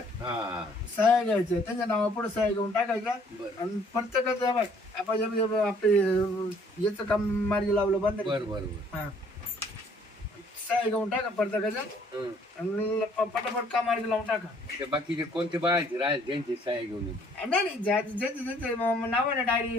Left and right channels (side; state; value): both; normal; correlation 0.61